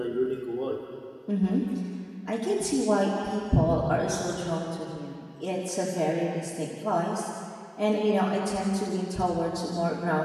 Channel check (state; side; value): identical; both; correlation 1.00